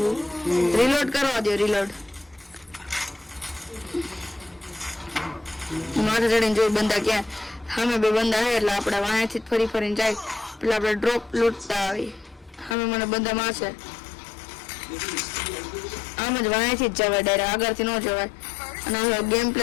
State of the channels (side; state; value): right; drops out; at 12.8 s